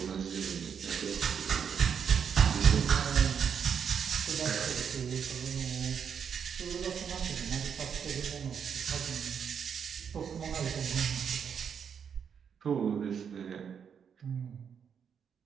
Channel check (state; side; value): quieter; left; 7.3 dB